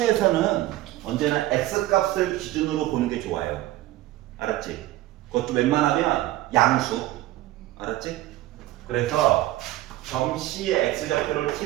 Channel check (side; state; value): left; quieter; 16.0 dB